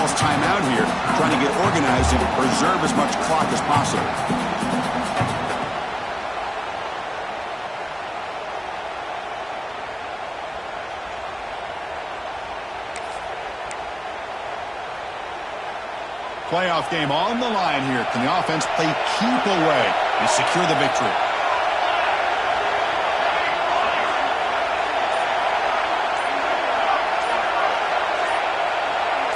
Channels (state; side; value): identical; both; correlation 1.00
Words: timeout here, trying to get organized and preserve as much clock as possible. Playoff game on the line here. Can the offense play keep away and secure the victory?